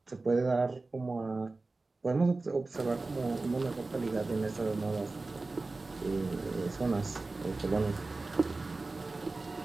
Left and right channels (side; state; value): left; quieter; 3.4 dB